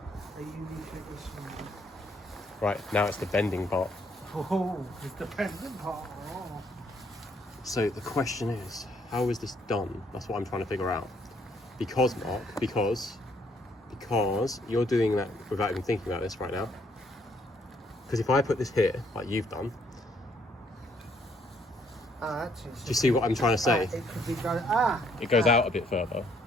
A Eureka-ish movie. Right, now it's the bending part. Oh, it's the pendant part. Oh. So the question is, how is this done? That's what I'm trying to figure out. Because, Mark, because you're doing that without even thinking about this right now. Because if I put this here, like you've done, Actually, do you see what I'm trying to say? it could be going... It goes out a bit further.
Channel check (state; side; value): normal; both; correlation 0.68